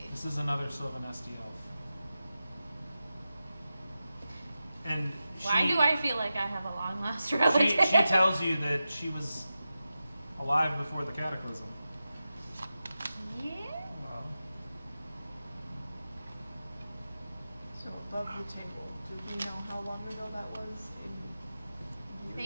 This is another Sylvanesti elf. And Why she, do I feel like I have a long lost she, relative? she tells you that she was alive before the cataclysm. Yeah. Well, So above the table, do we know how long ago that was? I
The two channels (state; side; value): inverted; both; correlation -0.92